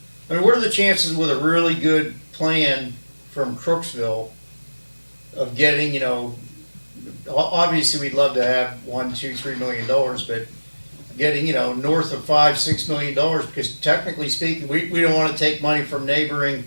I mean, what are the chances with a really good plan from Crooksville of getting, obviously we'd love to have $1, $2, $3 million, but getting, north of $5, $6 million, because technically speaking, we don't want to take money from neighboring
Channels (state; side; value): inverted; both; correlation -1.00